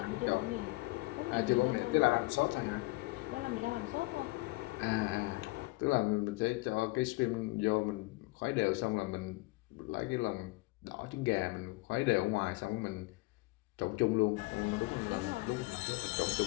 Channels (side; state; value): right; quieter; 23.2 dB